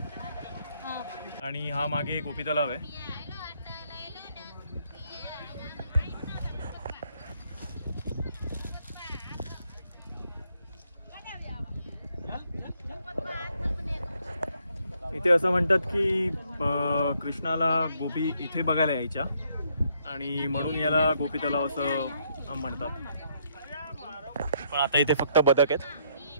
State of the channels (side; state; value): both; inverted; correlation -0.71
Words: आणि हा मागे गोपी तलाव आहे. इथे असं म्हणतात की कृष्णाला गोपी इथे बघायला यायच्या आणि म्हणून याला गोपी तलाव असं म्हणतात. पण आता इथे फक्त बदक आहेत.